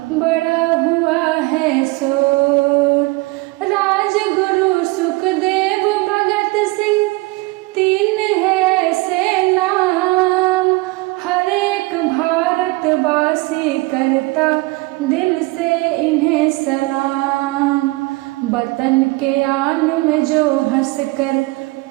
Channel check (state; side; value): quieter; left; 23.0 dB